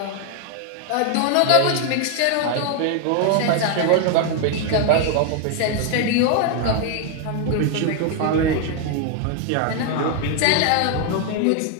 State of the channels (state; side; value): different; both; correlation 0.01